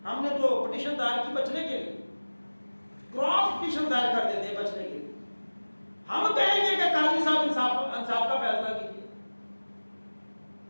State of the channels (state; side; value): inverted; both; correlation -1.00